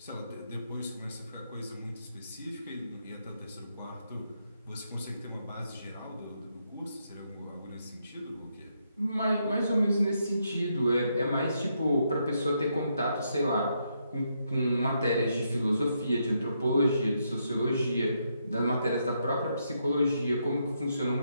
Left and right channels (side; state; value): both; inverted; correlation -0.78